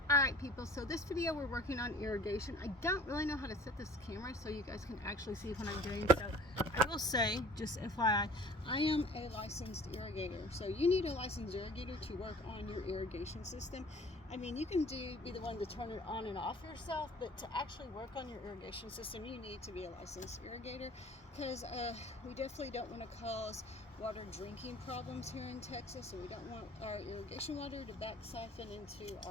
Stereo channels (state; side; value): normal; both; correlation 0.47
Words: Alright people, so this video we're working on irrigation. I don't really know how to set this camera so you guys can actually see what I'm doing. So I will say, just FYI, I am a licensed irrigator. So you need a licensed irrigator to work on your irrigation system. I mean, you can be the one to turn it on and off yourself, but to actually work on your irrigation system, you need to be a licensed irrigator, because we definitely don't want to cause water drinking problems here in Texas, and we don't want our irrigation water to back siphon into